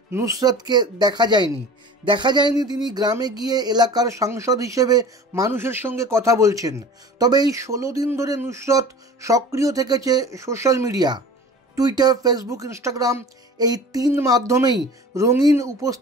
নুসরাতকে দেখা যায়নি তিনি গ্রামে গিয়ে এলাকার সাংসদ হিসেবে মানুষের সঙ্গে কথা বলছেন। তবে এই ১৬ দিন ধরে নুসরাত সক্রিয় থেকেছে social media, Twitter, Facebook, Instagram, এই ৩ মাধ্যমেই রঙিন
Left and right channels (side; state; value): both; normal; correlation 0.40